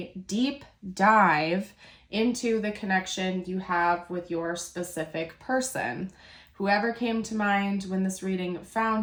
deep dive into the connection you have with your specific person. Whoever came to mind when this reading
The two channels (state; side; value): identical; both; correlation 1.00